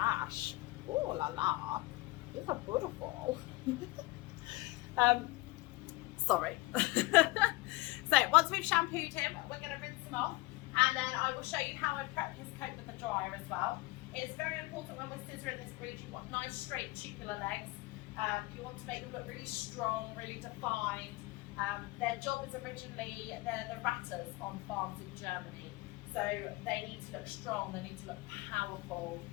Oh la la. These are beautiful. Sorry. So once we've shampooed him, we're going to rinse him off, and then I will show you how I prep his coat with the dryer as well. It's very important when we're scissoring this breed, you want nice straight tubular legs. You want to make them look really strong, really defined. Their job is originally, they're the ratters on farms in Germany. So they need to look strong, they need to look powerful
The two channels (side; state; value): right; quieter; 21.4 dB